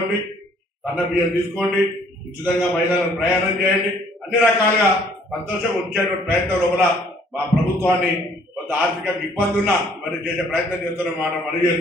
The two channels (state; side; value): normal; both; correlation 0.60